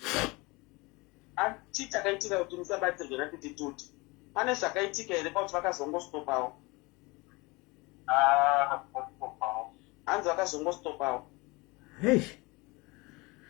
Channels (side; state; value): right; quieter; 25.0 dB